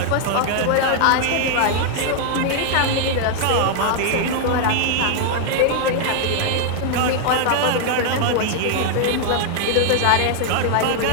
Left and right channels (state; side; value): different; both; correlation 0.00